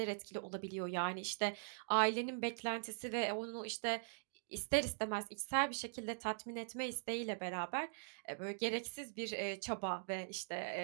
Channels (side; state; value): left; silent; digital silence